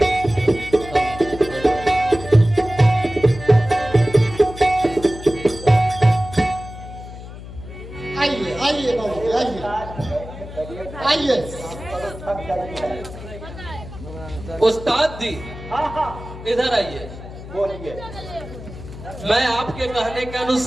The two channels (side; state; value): left; noise; hum, 13 dB below the sound